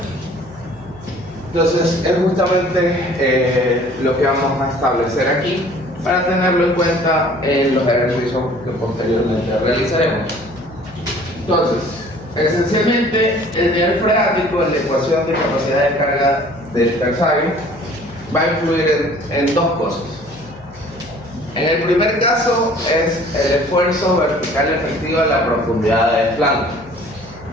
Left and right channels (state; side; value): noise; left; hum, 22 dB below the sound